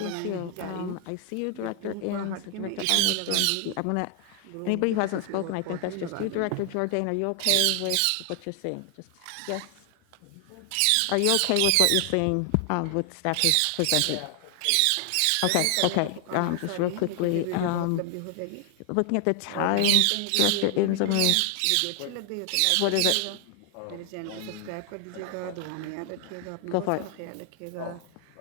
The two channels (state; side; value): different; both; correlation 0.00